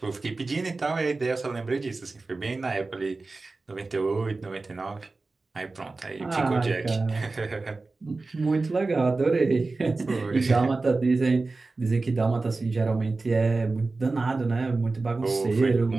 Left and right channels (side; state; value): left; quieter; 3.6 dB